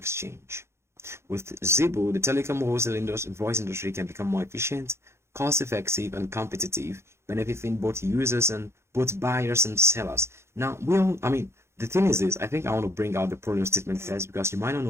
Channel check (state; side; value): late; left; 0.13 ms